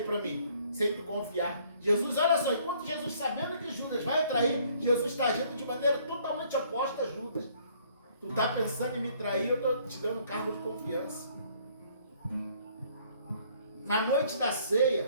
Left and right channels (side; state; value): both; inverted; correlation -0.62